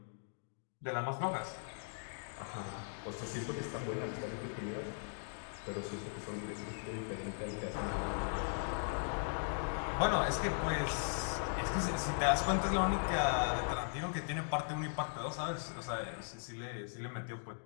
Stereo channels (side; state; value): right; silent; digital silence